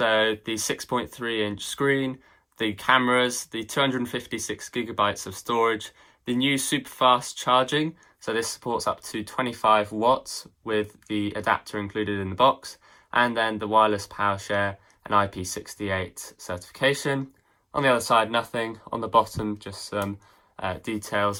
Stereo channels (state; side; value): identical; both; correlation 1.00